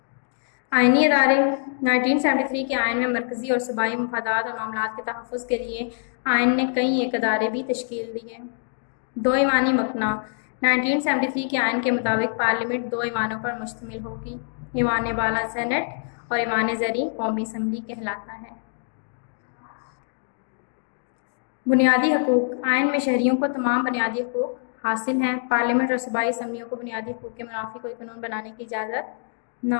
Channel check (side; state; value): right; silent; digital silence